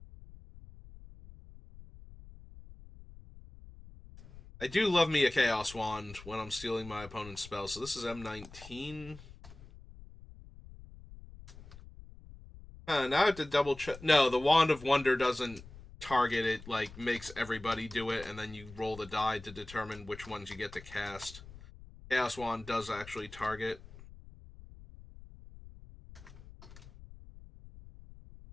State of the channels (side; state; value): left; noise; rumble, 18 dB below the sound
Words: I do love me a Chaos Wand when I'm stealing my opponent's spells, so this is M19. Now I have to double check. No, the Wand of Wonder doesn't target it, like, makes everybody do it, and then you roll the die to determine which ones you get to cast. Chaos Wand does actually target.